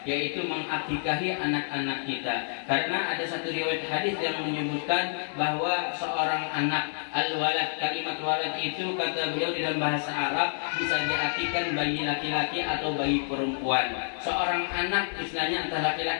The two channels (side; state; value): right; silent; digital silence